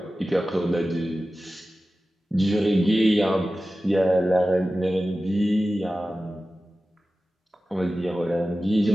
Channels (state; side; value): normal; both; correlation 0.95